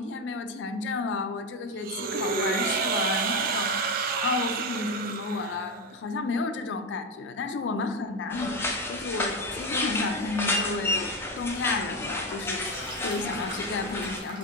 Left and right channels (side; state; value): both; normal; correlation 0.13